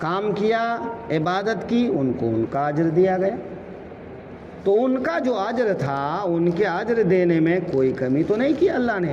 کیا، عبادت کی، ان کو ان کا اجر دیا گیا۔ تو ان کا جو اجر تھا، ان کے اجر دینے میں کوئی کمی تو نہیں کی اللہ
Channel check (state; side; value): identical; both; correlation 1.00